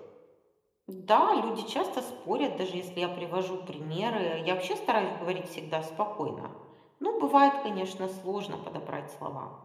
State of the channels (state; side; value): identical; both; correlation 1.00